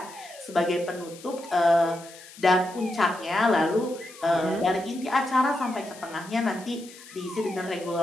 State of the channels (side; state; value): left; noise; hiss, 19 dB below the sound